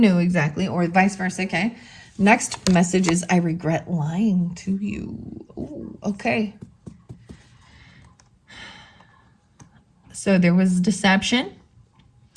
exactly, or vice versa, okay? Next message is, I regret lying to you. Ooh, okay. So there was deception.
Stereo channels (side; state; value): both; identical; correlation 1.00